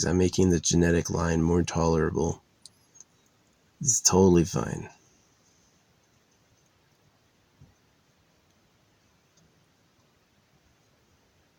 I'm making the genetic line more tolerable. This is totally fine.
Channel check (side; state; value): both; identical; correlation 1.00